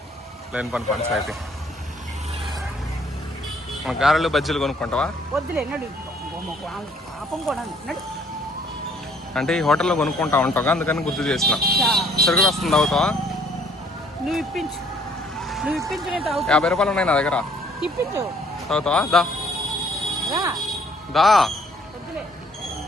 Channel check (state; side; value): normal; both; correlation 0.62